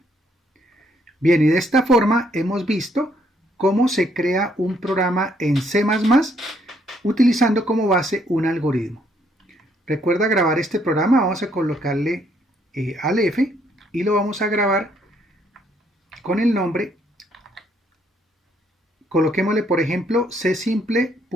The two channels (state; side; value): normal; both; correlation 0.70